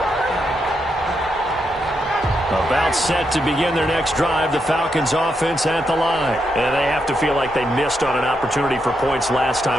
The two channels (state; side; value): normal; both; correlation 0.82